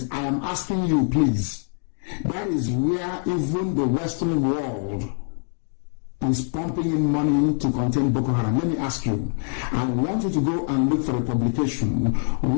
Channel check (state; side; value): silent; right; 56 dB below the other